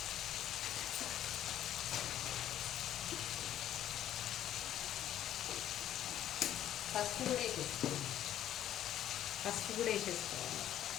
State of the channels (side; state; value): right; quieter; 11.5 dB